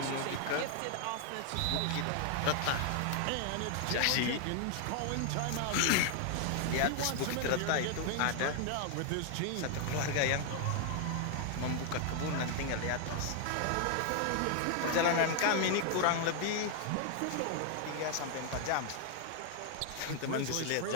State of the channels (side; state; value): both; different; correlation 0.00